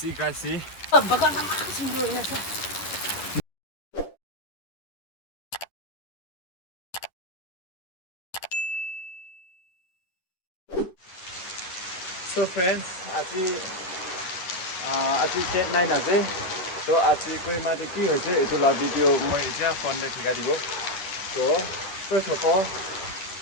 guys, see. So friends, আজি date 9 আছে তো আজি Kohima তে কি হৈছে এটো লা ভিডিও মই এতিয়া ফোনতে ঠিকা দিব তো first of all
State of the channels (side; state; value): right; late; 10 ms